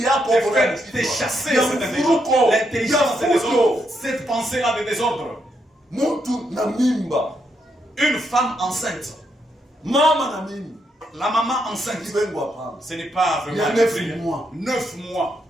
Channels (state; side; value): normal; both; correlation 0.79